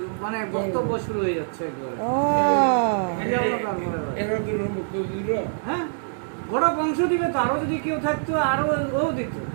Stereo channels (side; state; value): left; silent; digital silence